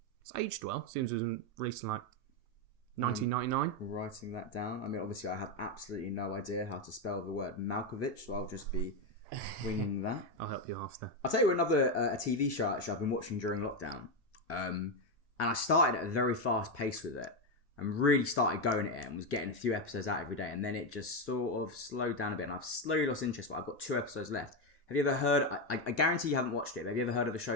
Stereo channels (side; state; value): both; normal; correlation 0.08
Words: It's aged well. Seems it was released in like 1999. Writing that down. I mean, obviously, I have absolutely no idea how to spell the word Malkovich, so I'll just be winging that. I'll help you after. I'll tell you another a TV show actually I've been watching during lockdown, and I started at a very fast pace with it, and really started going at it, and was getting a few episodes out every day, and then it just sort of slowed down a bit, and I've slowly lost interest. But I've got 2 episodes left. Have you ever heard? I guarantee you haven't watched it. But have you ever heard of a